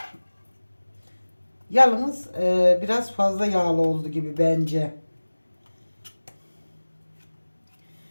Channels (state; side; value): inverted; both; correlation -1.00